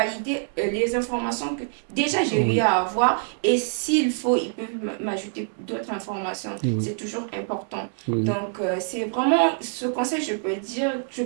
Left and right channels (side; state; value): left; silent; digital silence